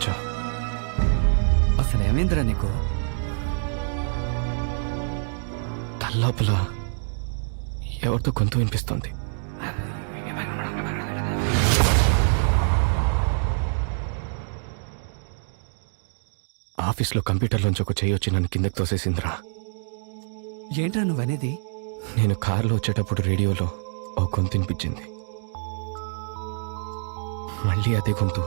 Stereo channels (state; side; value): silent; left; digital silence